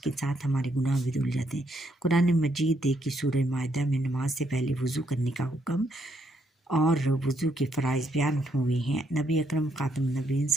साथ हमारे गुनाह भी धुल जाते हैं। कुरान मजीद की सूरह माइदा में नमाज से पहले वज़ू करने का हुक्म और वज़ू के फ़राइज़ बयान हुए हैं। नबी अकरम ख़ातम नबीन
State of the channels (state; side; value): normal; both; correlation 0.74